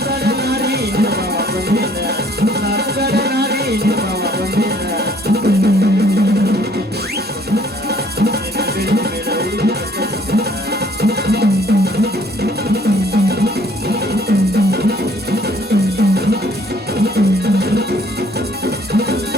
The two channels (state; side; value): normal; both; correlation 0.60